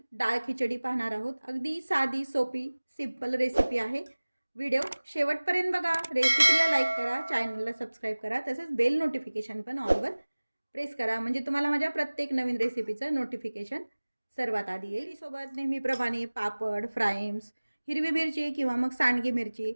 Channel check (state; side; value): inverted; both; correlation -1.00